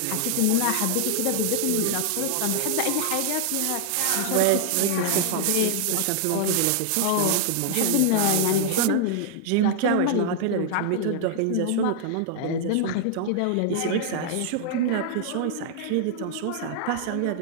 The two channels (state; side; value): different; both; correlation 0.00